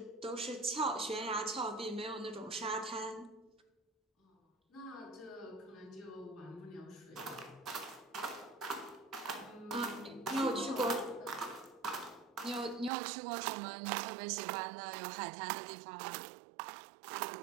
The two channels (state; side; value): drops out; left; at 12.9 s